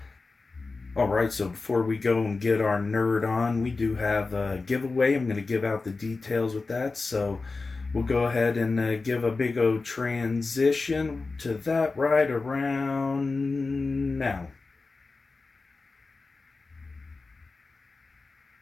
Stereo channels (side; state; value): right; quieter; 3.9 dB